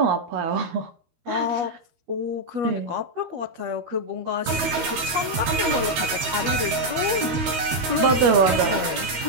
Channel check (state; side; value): late; left; 12 ms